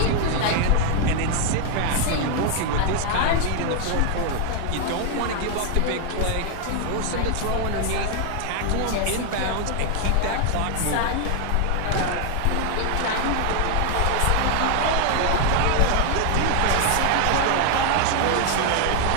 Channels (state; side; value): different; both; correlation 0.00